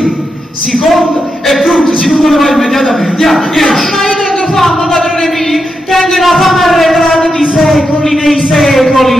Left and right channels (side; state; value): both; normal; correlation 0.85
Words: seconda e frutta, si tu ne vai immediatamente. Andiamo, esci. Ma io tengo fame, padrone mio, tengo una fame arretrata di secoli nei